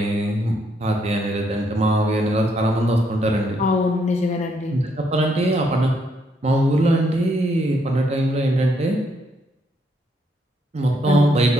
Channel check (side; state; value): both; normal; correlation 0.74